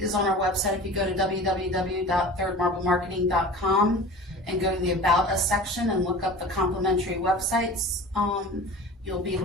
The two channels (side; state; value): both; normal; correlation 0.38